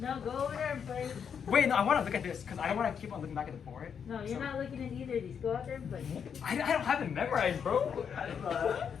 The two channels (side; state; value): right; quieter; 7.3 dB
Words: go over there and play. Wait, no, I want to look at this because I don't want to keep on looking back at the board. No, you're not looking at either of these. Go out there and play. I don't have it memorized, bro.